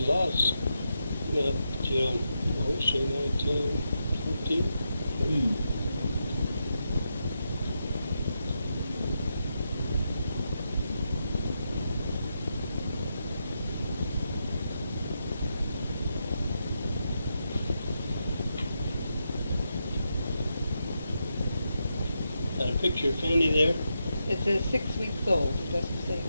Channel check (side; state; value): both; inverted; correlation -0.84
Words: lots. Till, say 1914. Got a picture of Fanny there? It says 6 weeks old. It doesn't say.